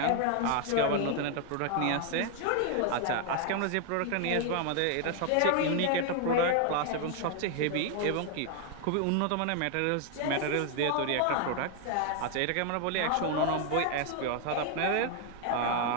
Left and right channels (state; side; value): different; both; correlation 0.00